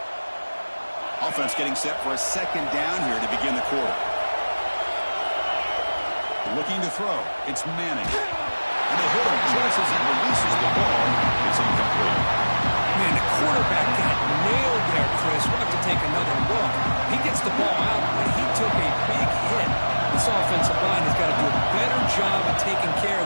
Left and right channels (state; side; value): inverted; both; correlation -1.00